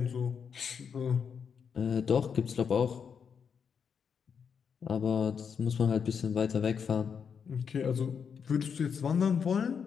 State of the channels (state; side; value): quieter; right; 6.7 dB